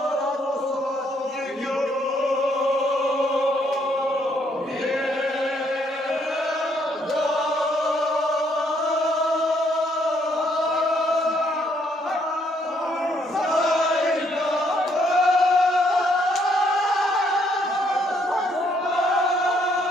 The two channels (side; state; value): both; normal; correlation 0.70